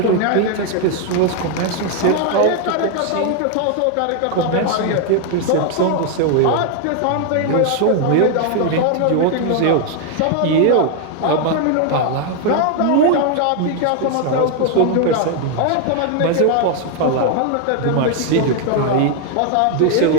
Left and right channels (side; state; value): both; different; correlation 0.00